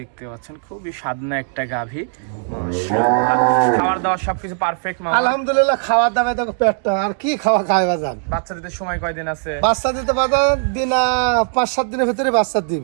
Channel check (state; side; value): silent; left; 67 dB below the other